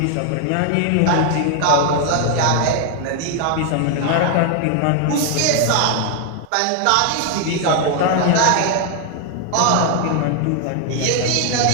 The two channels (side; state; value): both; different; correlation 0.00